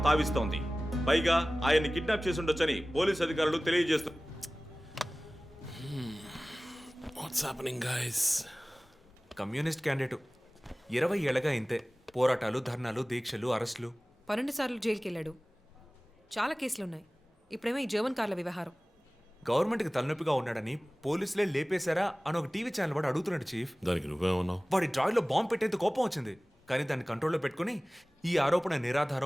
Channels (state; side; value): normal; both; correlation 0.98